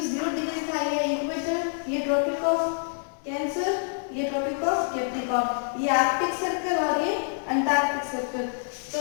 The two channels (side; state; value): right; silent; 59 dB below the other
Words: 0 डिग्री था ये इक्वेटर, ये ट्रॉपिक ऑफ कैंसर, ये ट्रॉपिक ऑफ कैप्रिकॉर्न, ये आर्कटिक सर्कल और ये अंटार्कटिक सर्कल। तो